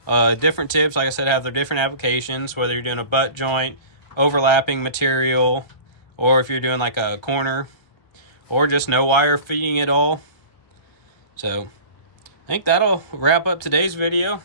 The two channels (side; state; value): right; late; 1.3 ms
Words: Different tips, like I said, have their different applications, whether you're doing a butt joint, overlapping material, or if you're doing like a corner, or just no wire feeding at all. So I think that'll wrap up today's video.